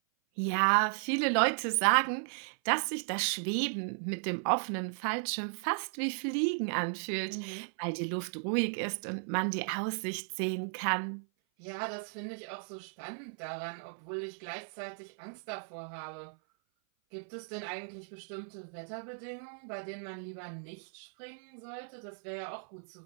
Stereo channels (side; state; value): left; silent; 54 dB below the other